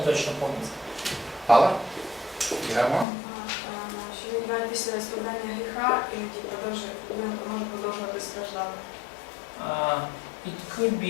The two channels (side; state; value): right; drops out; at 3.1 s